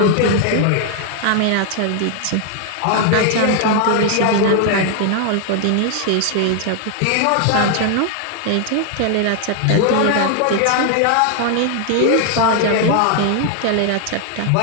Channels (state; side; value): different; both; correlation 0.00